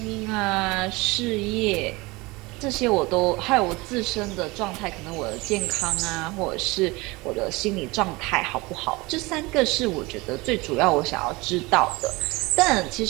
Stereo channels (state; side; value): quieter; left; 23.4 dB